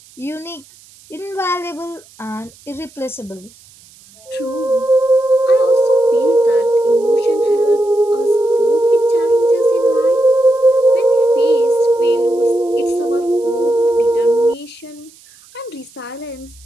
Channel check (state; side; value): noise; right; hiss, 26 dB below the sound